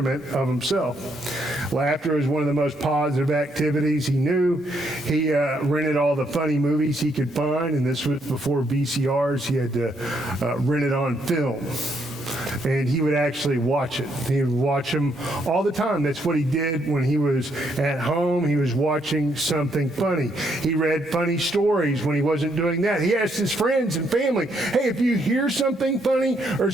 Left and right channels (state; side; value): normal; both; correlation 0.74